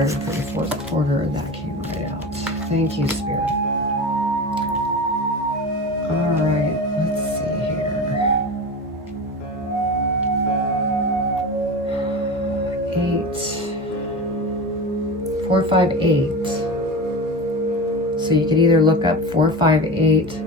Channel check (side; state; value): both; normal; correlation 0.28